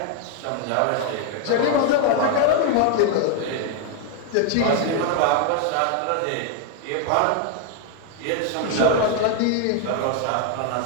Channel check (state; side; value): different; both; correlation 0.00